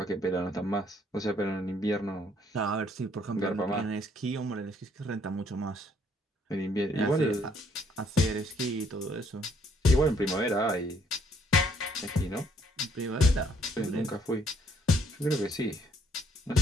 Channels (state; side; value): normal; both; correlation 0.66